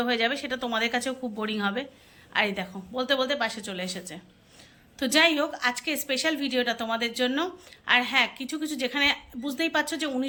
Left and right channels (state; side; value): identical; both; correlation 1.00